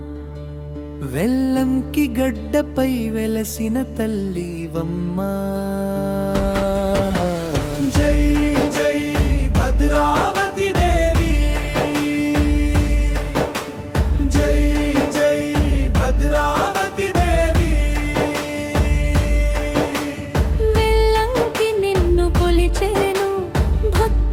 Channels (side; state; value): both; identical; correlation 1.00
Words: వెల్లంకి గడ్డపై వెలసిన తల్లివమ్మా. జై జై భద్రావతి దేవి, జై జై భద్రావతి దేవి. వెల్లంకి నిన్ను కొలిచేను,